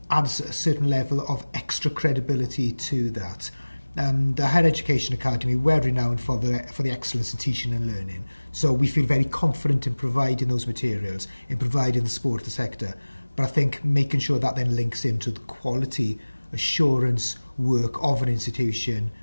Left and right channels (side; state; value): both; inverted; correlation -1.00